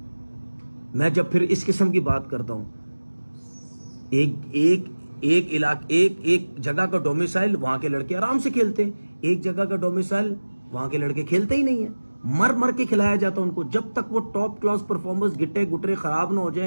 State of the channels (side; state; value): both; inverted; correlation -1.00